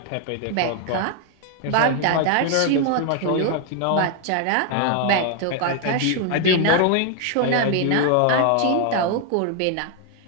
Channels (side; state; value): both; different; correlation 0.01